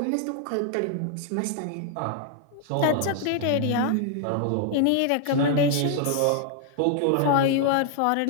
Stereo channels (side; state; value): both; different; correlation 0.00